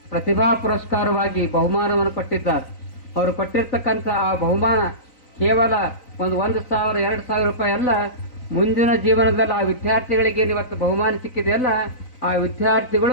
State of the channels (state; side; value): late; right; 3.9 ms